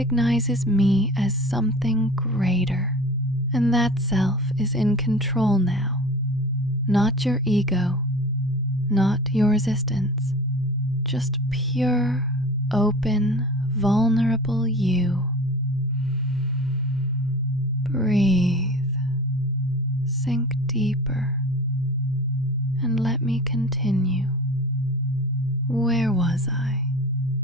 me as something greater. And that self is in control now, not your ego, not your resistance, just pure, open, vulnerable you. Breathe, sink deeper, and let me continue. Where was I?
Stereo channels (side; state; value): both; normal; correlation 0.37